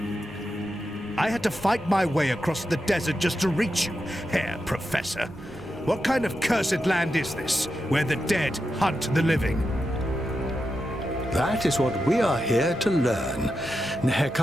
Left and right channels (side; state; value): both; normal; correlation 0.88